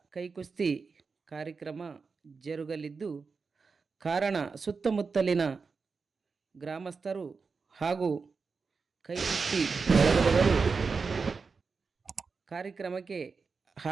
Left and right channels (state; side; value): quieter; left; 4.8 dB